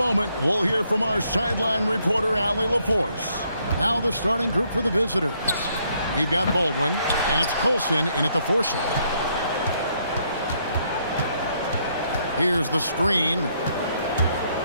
we'll hear from our sideline reporter, Allie LaForce. Now the starting group for the visitors. We've got Baldwin, and it's Colson in at the 4 slot. Here's the screen.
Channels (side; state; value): both; inverted; correlation -0.72